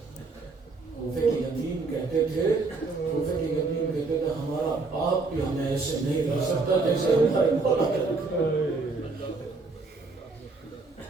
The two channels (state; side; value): quieter; left; 3.9 dB